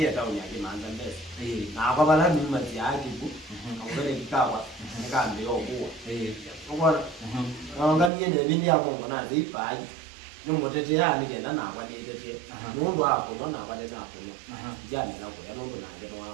tauni yake manza mbele. Na kwa bala ni mazi yake ku. Ngore kikawa nikambe yokuwa. Ngora. Nganganie ne bindi ya Mungu na zipaji. Ni mutete ya ni kenda na kwa ni tete. Mundu hapo na kwa ni hapo. Jana na kwa ndo na ndio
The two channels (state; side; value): drops out; left; at 8.1 s